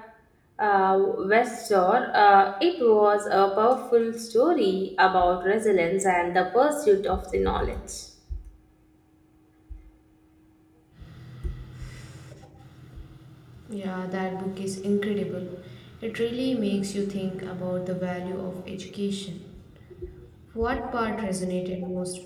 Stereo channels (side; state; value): both; identical; correlation 1.00